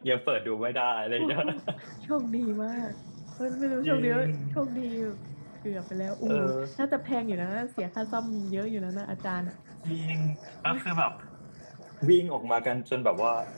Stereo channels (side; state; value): both; inverted; correlation -1.00